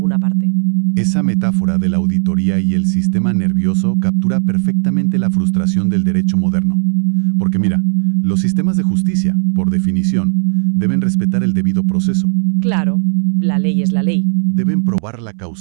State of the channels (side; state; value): left; silent; 66 dB below the other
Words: parte. Esa metáfora de la auditoría y el sistema nervioso captura perfectamente la frustración del derecho moderno. Porque mira, los sistemas de justicia, por definición, deben respetar el debido proceso. Claro, la ley es la ley. Deben probar la